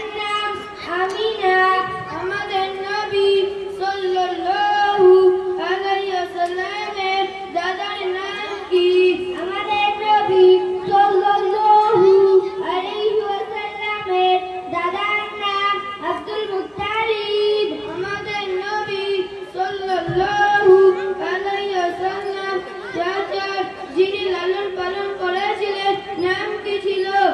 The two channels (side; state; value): both; identical; correlation 1.00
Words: নাম আমিনা। আমাদের নবী সাল্লাল্লাহু আলাইহি ওয়াসাল্লামের দাদার নাম কি? আমাদের নবী সাল্লাল্লাহু আলাইহি ওয়াসাল্লামের দাদার নাম আব্দুল মুত্তালিব। আমাদের নবী সাল্লাল্লাহু আলাইহি ওয়াসাল্লাম চাচার যিনি লালন পালন করেছিলেন নাম কি ছিল?